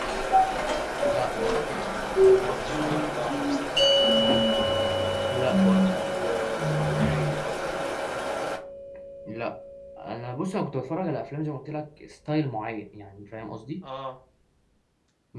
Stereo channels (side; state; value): both; identical; correlation 1.00